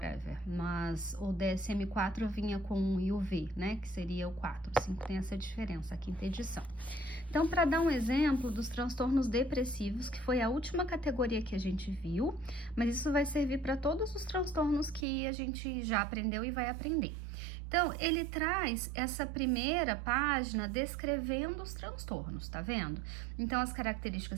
mas o DSM-4 vinha com um e o V, né, que seria o 4. O 5 tem essa diferença, a quinta edição. Então, para dar um exemplo dos transtornos depressivos, que foi a última categoria que a gente viu, mas isso vai servir para todos os transtornos que a gente já aprendeu e vai aprender. Então, ele traz essa primeira página descrevendo os transtornos, tá vendo? Então, as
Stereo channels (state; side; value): drops out; left; at 15.1 s